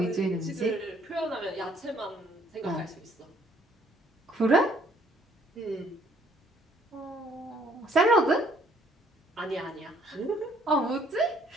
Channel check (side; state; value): both; normal; correlation 0.63